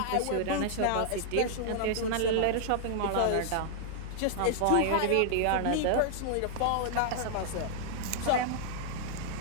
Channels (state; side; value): different; both; correlation -0.01